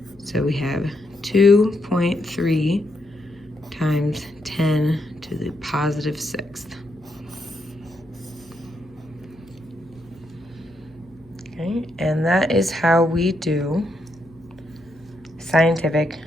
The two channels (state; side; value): noise; left; hum, 27 dB below the sound